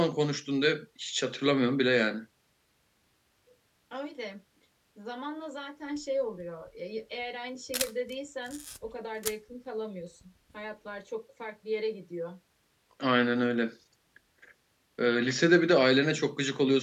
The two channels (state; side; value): identical; both; correlation 1.00